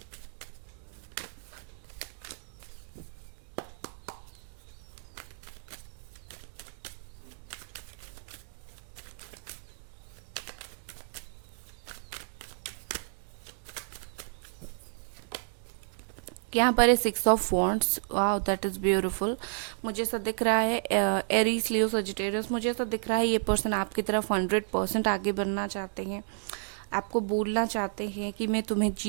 यहाँ पर है 6 of wands. Wow, that is beautiful. मुझे ऐसा दिख रहा है एरीज, लियो, सजिटेरियस, मुझे ऐसा दिख रहा है ये पर्सन आपकी तरफ 100% आगे बढ़ना चाहते हैं। आपको बोलना चाहते हैं कि मैं तुम्हें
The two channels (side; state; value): left; silent; digital silence